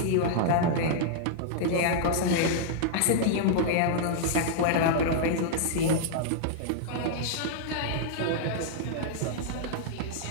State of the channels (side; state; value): both; different; correlation -0.01